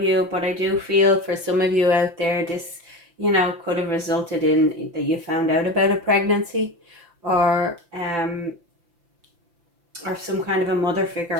you, but I do feel for some of you out there, this, you know, could have resulted in that you found out about a pregnancy, or some kind of a mother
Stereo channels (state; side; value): late; left; 5.9 ms